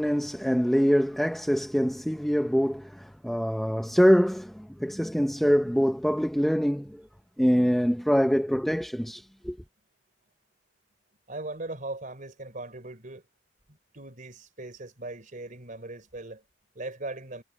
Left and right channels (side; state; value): both; normal; correlation 0.98